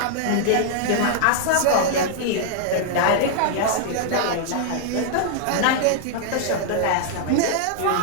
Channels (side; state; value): both; different; correlation -0.01